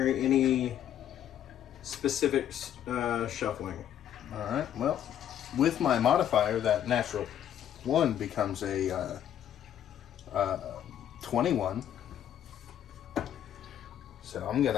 any specific shuffling. All right. Well, with my modifier, that natural 1 becomes a 21. So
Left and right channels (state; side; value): quieter; right; 10.5 dB